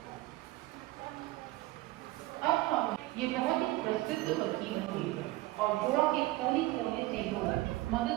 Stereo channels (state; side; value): quieter; left; 18.5 dB